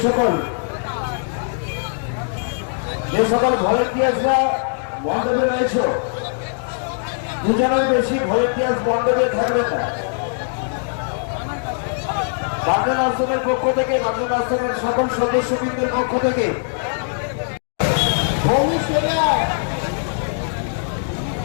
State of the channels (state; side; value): silent; right; digital silence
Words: যে সকল ভলেন্টিয়ার্সরা মণ্ডপে রয়েছে, দুজনের বেশি ভলেন্টিয়ার্স মণ্ডপে থাকবেন না। বাগনান আশ্রমের পক্ষ থেকে, বাগনান আশ্রমের সকল সদস্যবৃন্দের পক্ষ থেকে